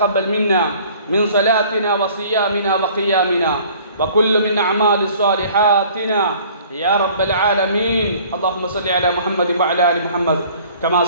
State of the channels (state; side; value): inverted; both; correlation -0.52